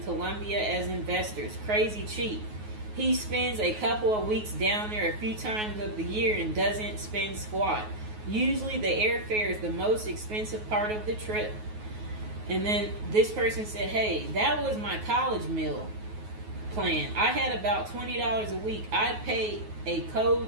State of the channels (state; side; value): late; left; 9.4 ms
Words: Colombia as investors. Crazy cheap. He spends a couple of weeks down there a few times of the year and doesn't spend squat. Usually the airfare is the most expensive part of the trip. And then this person said, hey, that was my college meal plan. I had about $20 a week. I'd pay a